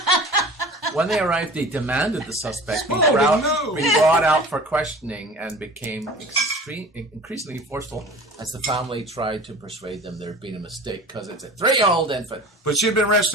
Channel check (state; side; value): normal; both; correlation 0.40